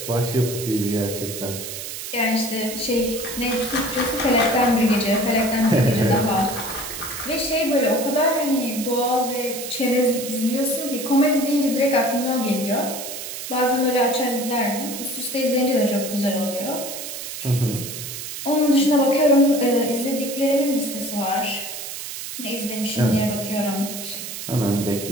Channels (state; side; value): noise; right; hiss, 8 dB below the sound